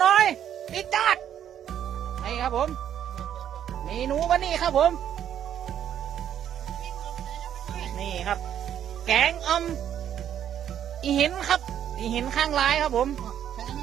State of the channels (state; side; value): quieter; left; 10.0 dB